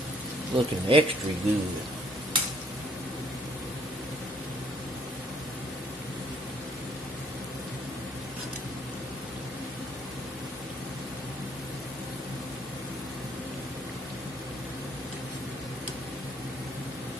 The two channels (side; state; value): both; normal; correlation 0.64